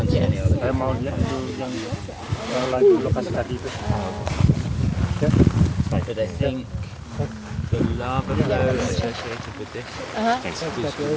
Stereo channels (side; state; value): both; identical; correlation 1.00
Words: see any other. Saya mau lihat itu yang lagi lokasi tadi itu. Ya. But I think the lava flow associated with this Uh-huh. is the one that